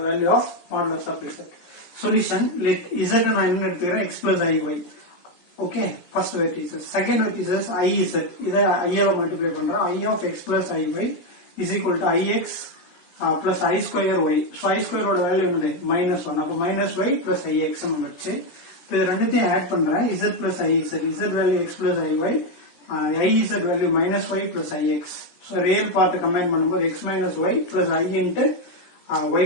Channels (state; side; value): late; right; 17 ms